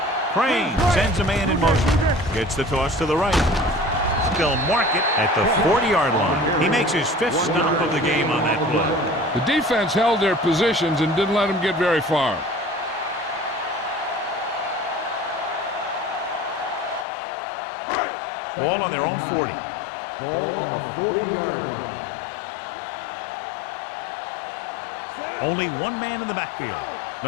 Crane sends a man in motion. Gets the toss to the right. They'll mark it at the 40-yard line. He makes his fifth stop of the game on that play. The defense held their positions and didn't let them get very far. Ball on their own 40. Ball on the 40-yard line. Yeah, you see me. Only one man in the backfield.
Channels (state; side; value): drops out; right; at 17.1 s